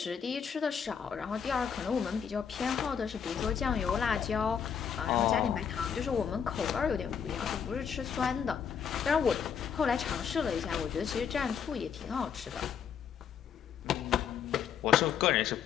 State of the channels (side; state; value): right; quieter; 7.5 dB